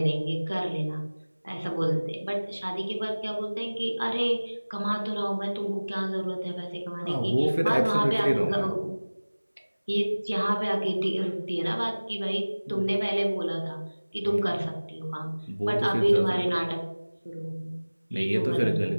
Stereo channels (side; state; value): both; inverted; correlation -1.00